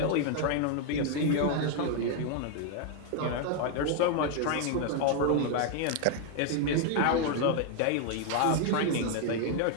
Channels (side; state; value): both; different; correlation 0.00